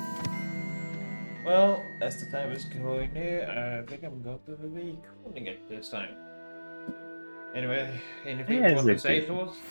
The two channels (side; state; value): both; inverted; correlation -1.00